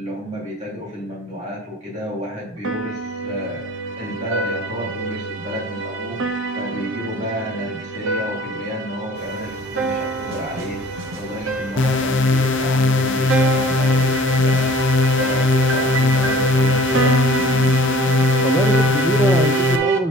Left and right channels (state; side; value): normal; both; correlation 0.49